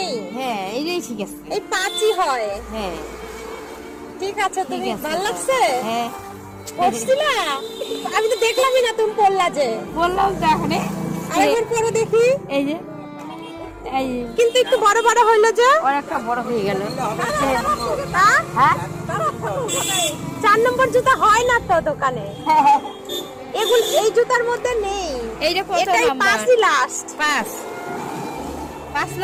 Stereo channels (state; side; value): identical; both; correlation 1.00